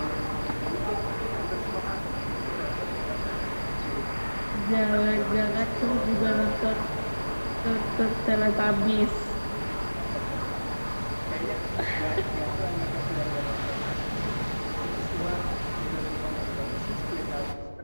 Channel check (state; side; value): inverted; both; correlation -1.00